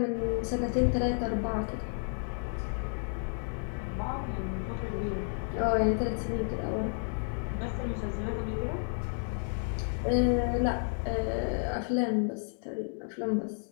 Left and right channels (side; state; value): right; silent; 57 dB below the other